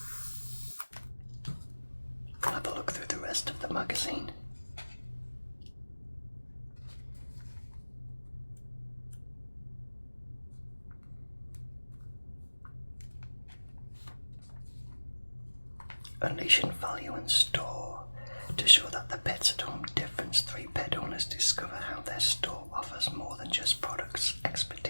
We'll have a look through the rest of the magazine. Unleashing value in store. To show that the Pets at Home difference, 3 pet owners discover how their store offers more than just products.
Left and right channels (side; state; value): both; inverted; correlation -1.00